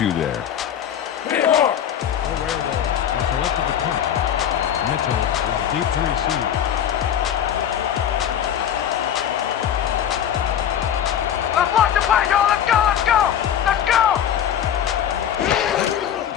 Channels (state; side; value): quieter; right; 9.6 dB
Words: there. The Werewolf has selected the punt. Mitchell is deep to receive. Let's lock the play, y'all. Let's go.